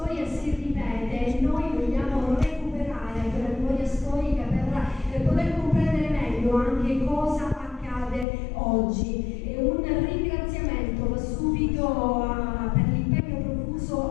si ripete e noi vogliamo recuperare quella memoria storica per poter comprendere meglio anche cosa accade oggi. Un ringraziamento va subito per l'impegno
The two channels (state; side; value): drops out; right; at 8.2 s